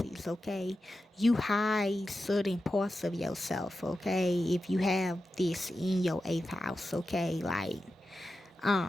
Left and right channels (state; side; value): normal; both; correlation 0.91